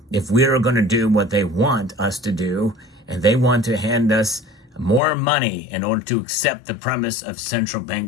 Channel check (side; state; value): right; drops out; at 5.0 s